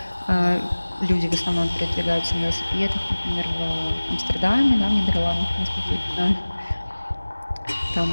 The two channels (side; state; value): both; inverted; correlation -1.00